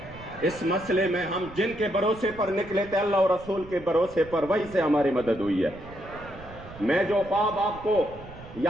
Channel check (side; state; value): right; noise; rumble, 17 dB below the sound